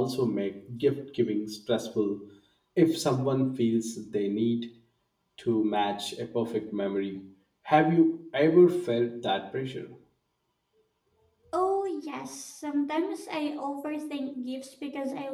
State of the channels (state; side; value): identical; both; correlation 1.00